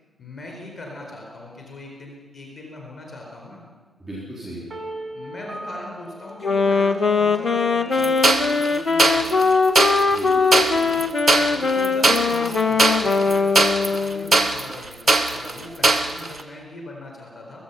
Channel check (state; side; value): normal; both; correlation 0.78